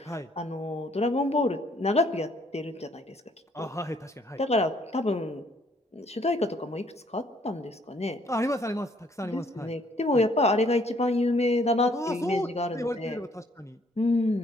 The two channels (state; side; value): normal; both; correlation 0.65